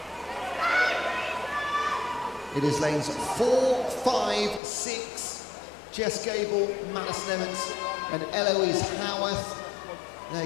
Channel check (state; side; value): drops out; right; at 4.6 s